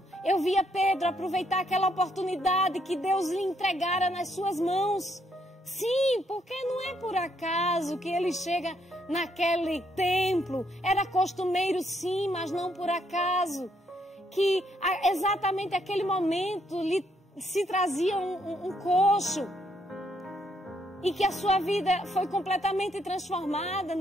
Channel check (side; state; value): both; normal; correlation 0.73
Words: eu via Pedro aproveitar aquela oportunidade que Deus lhe entregara nas suas mãos. Sim, porque não é por acaso que ele chega naquele templo. Era costumeiro sim, mas não por acaso. Que exatamente aquele momento lhe se trazia um coxo. E que a sua vida foi completamente transformada.